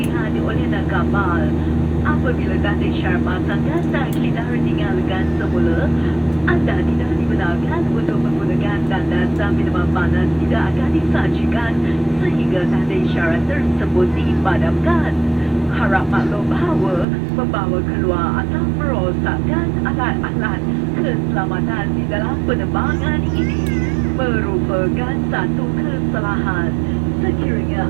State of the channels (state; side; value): drops out; left; at 17.1 s